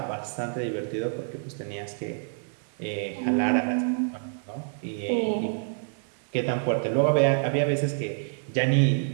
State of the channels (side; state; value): left; silent; 60 dB below the other